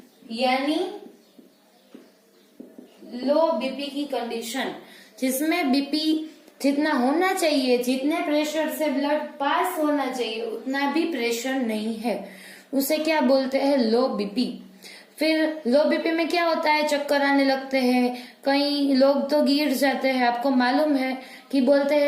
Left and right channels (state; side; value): identical; both; correlation 1.00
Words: यानी लो बीपी की कंडीशन, जिसमें बीपी जितना होना चाहिए, जितने प्रेशर से ब्लड पास होना चाहिए उतना भी प्रेशर नहीं है, उसे क्या बोलते हैं? लो बीपी। फिर लो बीपी में क्या होता है? चक्कर आने लगते हैं, कई लोग तो गिर जाते हैं। आपको मालूम है कि बोलते